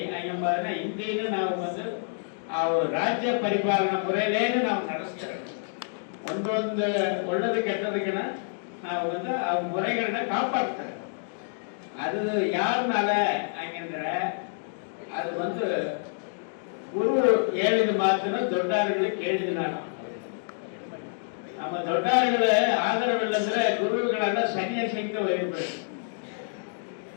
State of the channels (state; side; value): silent; right; digital silence